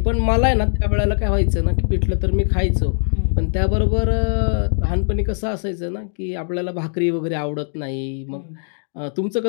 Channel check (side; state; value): right; silent; digital silence